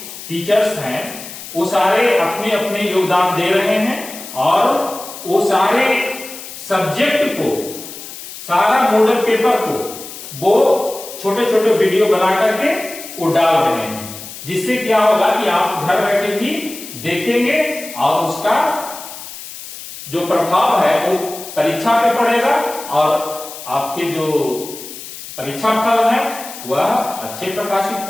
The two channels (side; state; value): left; noise; hiss, 13 dB below the sound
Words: टीचर्स हैं वो सारे अपने अपने योगदान दे रहे हैं और वो सारे सब्जेक्ट को, सारा मॉडल पेपर को वो छोटे छोटे वीडियो बना करके वो डाल रहे हैं, जिससे क्या होगा कि आप घर बैठे भी देखेंगे और उसका जो प्रभाव है वो परीक्षा पे पड़ेगा और आपके जो परीक्षा फल है वह अच्छे प्रकाशित